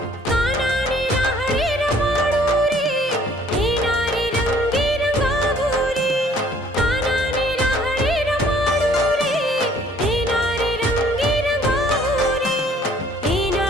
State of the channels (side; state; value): both; normal; correlation 0.58